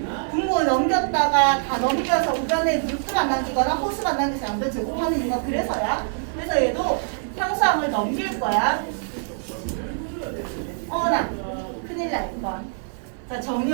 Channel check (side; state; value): left; silent; 63 dB below the other